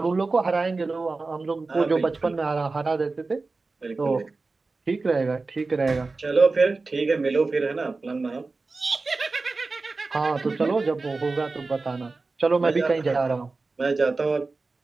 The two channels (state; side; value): quieter; left; 3.8 dB